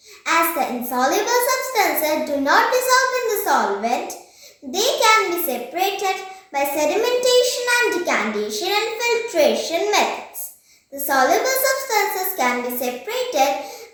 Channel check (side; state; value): both; identical; correlation 1.00